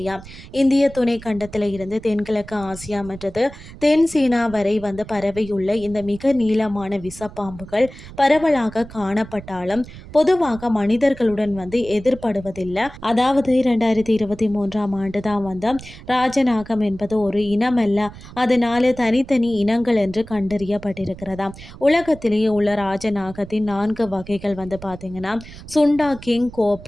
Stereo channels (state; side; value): noise; right; rumble, 16 dB below the sound